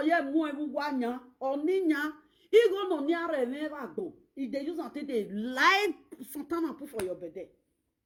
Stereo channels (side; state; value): both; identical; correlation 1.00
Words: ye mo ewu wanya oninya. Igo no niare never go. If they use until they lie Santana put for your belly.